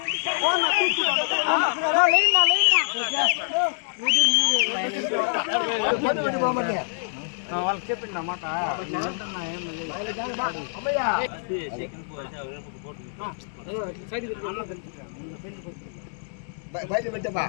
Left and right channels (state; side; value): silent; right; digital silence